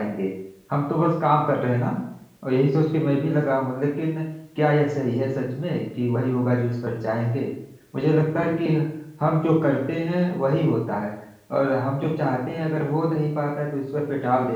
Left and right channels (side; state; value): both; identical; correlation 1.00